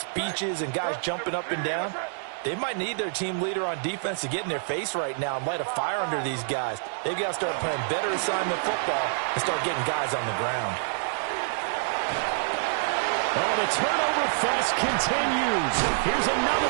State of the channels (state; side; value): silent; left; 60 dB below the other